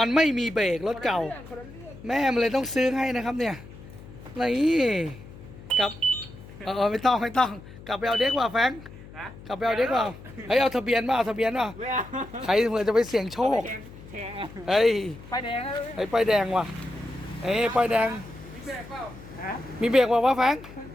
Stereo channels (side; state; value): left; noise; hum, 17 dB below the sound